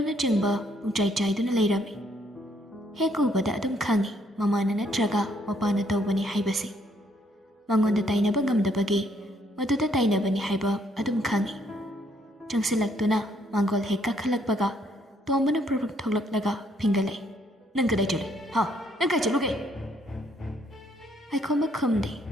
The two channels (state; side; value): normal; both; correlation 0.69